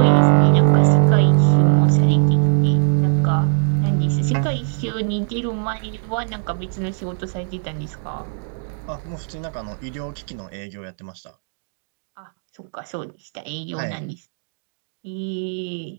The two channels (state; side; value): silent; left; digital silence